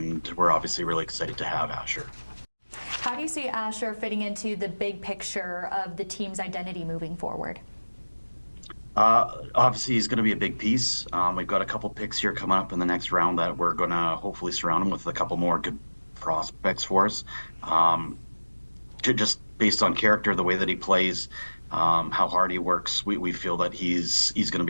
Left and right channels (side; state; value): both; inverted; correlation -1.00